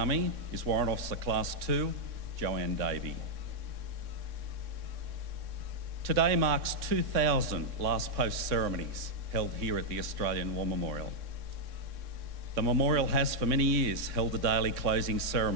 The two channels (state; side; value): late; left; 3.6 ms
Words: is Warrant Officer Class 2, Joanne Davey. Today marks 2,000 Last Post ceremonies held here at the Australian War Memorial. The memorial has for many years held a daily closing